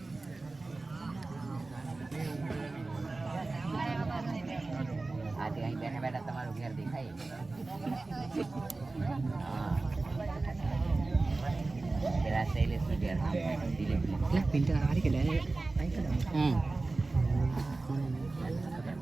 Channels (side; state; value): left; quieter; 3.4 dB